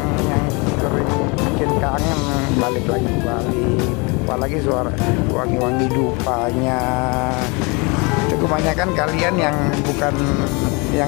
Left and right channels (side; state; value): right; quieter; 29.1 dB